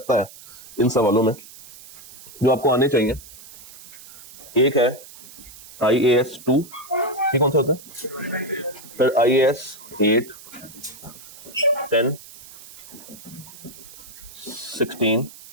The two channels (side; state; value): right; noise; hiss, 18 dB below the sound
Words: है इन सवालों में जो आपको आने चाहिए, एक है IAS 2, ये कौन सा होता है? फिर IAS 8, 10, 16,